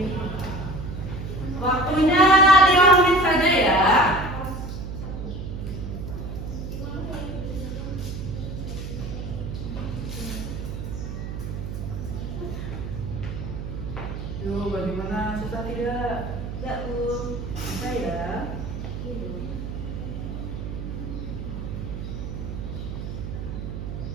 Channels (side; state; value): right; noise; hum, 6 dB below the sound